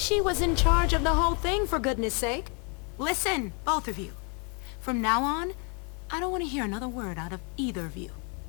was in charge of the whole thing, for goodness sake. Listen, both of you. From now on, I don't want to hear another word out of either of you.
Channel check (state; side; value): quieter; right; 36.3 dB